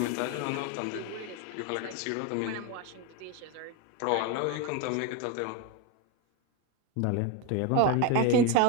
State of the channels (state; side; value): different; both; correlation 0.02